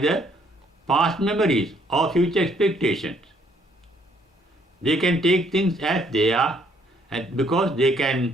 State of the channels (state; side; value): normal; both; correlation 0.66